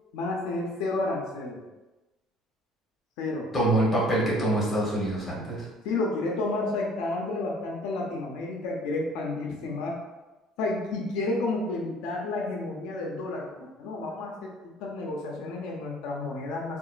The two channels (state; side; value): normal; both; correlation 0.53